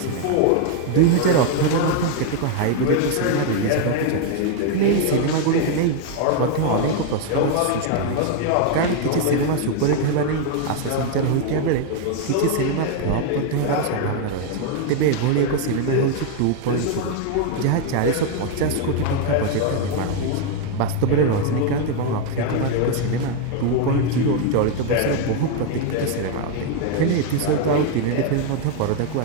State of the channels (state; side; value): different; both; correlation 0.01